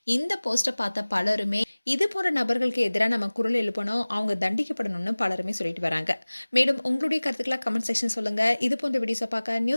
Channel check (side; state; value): both; inverted; correlation -1.00